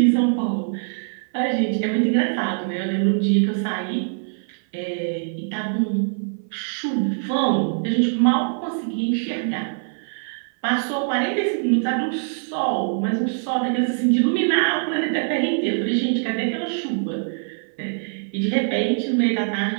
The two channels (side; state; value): left; silent; 56 dB below the other